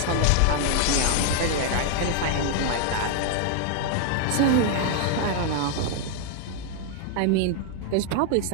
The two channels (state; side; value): different; both; correlation 0.00